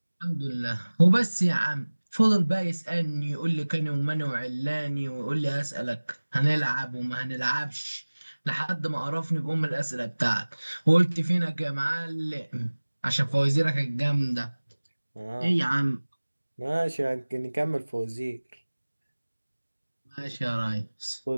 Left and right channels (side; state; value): both; inverted; correlation -1.00